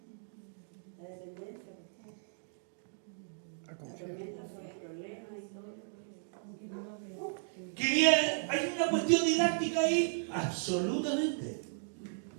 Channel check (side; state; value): left; silent; digital silence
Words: La dependencia. A confiar. Tormentas son problemas y todo. ¿Hay una cuestión didáctica ahí? Absolutamente.